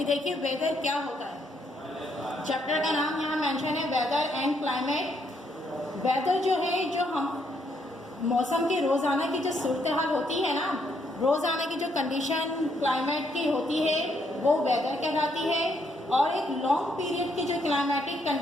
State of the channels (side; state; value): both; normal; correlation 0.73